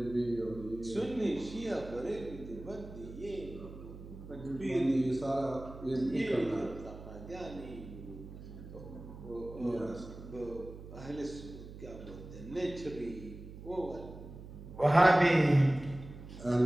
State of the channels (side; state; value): right; noise; hum, 14 dB below the sound